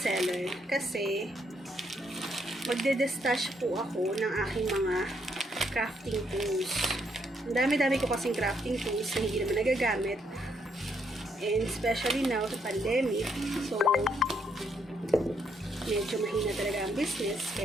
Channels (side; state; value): both; normal; correlation 0.73